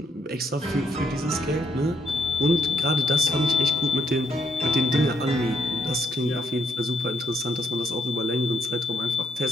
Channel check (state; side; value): normal; both; correlation 0.74